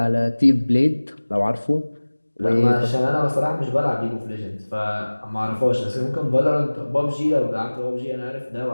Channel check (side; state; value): both; inverted; correlation -1.00